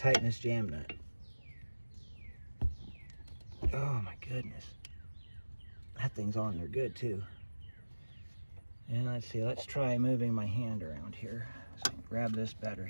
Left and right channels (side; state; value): both; inverted; correlation -1.00